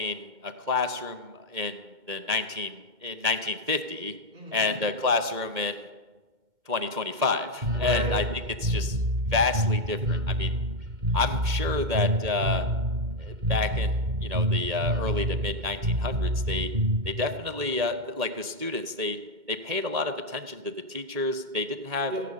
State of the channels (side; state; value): left; late; 2.1 ms